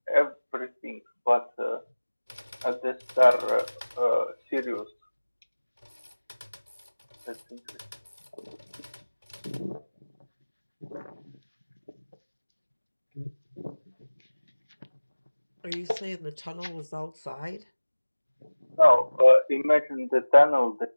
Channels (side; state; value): both; inverted; correlation -1.00